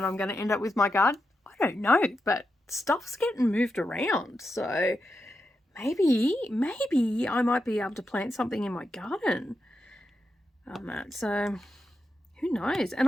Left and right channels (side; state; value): both; normal; correlation 0.87